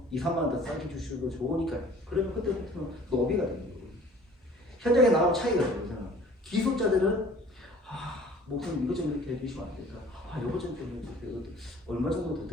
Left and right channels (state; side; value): normal; both; correlation 0.50